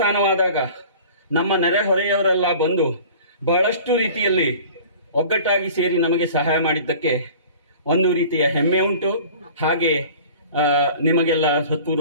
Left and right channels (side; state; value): both; inverted; correlation -0.44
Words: ನಮ್ಮ ನೆರೆಹೊರೆಯವರೆಲ್ಲ ಬಂದು ಬಹಳಷ್ಟು ರೀತಿಯಲ್ಲಿ ಒಗ್ಗಟ್ಟಾಗಿ ಸೇರಿ ನಮಗೆ ಸಹಾಯ ಮಾಡಿದ್ದಕ್ಕೆ ಒಂದು ರೀತಿಯ ಹೆಮ್ಮೆ ಉಂಟು. ಹಾಗೆ ನಿಮಗೆಲ್ಲ